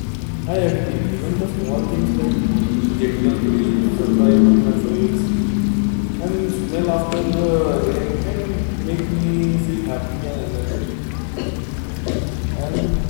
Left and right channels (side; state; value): right; silent; digital silence